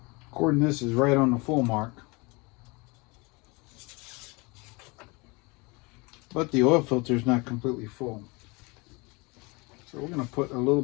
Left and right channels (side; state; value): right; quieter; 27.1 dB